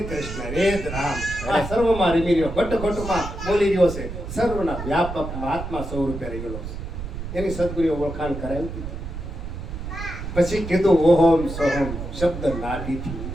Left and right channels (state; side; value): noise; right; rumble, 7 dB below the sound